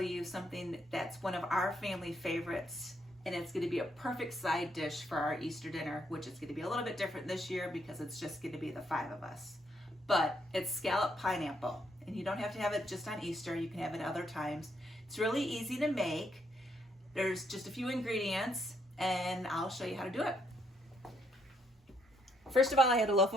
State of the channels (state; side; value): normal; both; correlation 0.73